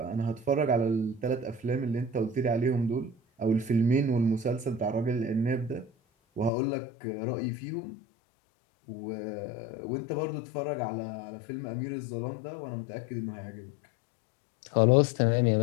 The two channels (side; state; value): right; drops out; at 6.5 s